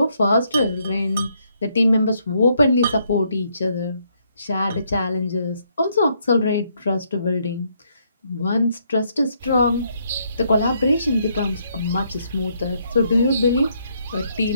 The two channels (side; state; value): both; inverted; correlation -0.73